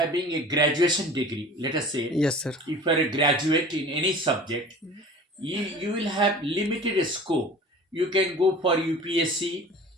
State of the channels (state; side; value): normal; both; correlation 0.42